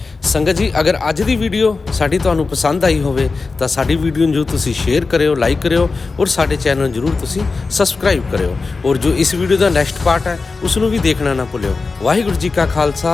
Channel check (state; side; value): quieter; right; 4.1 dB